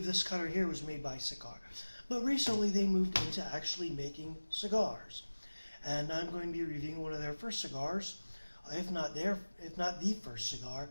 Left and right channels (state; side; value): inverted; both; correlation -1.00